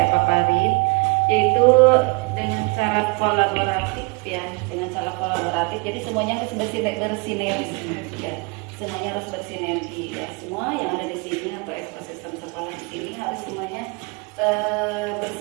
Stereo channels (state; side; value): quieter; left; 29.5 dB